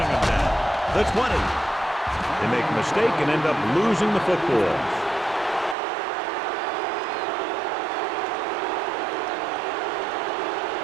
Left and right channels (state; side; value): drops out; left; at 5.8 s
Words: them down. The 20. They make a mistake and end up losing the football.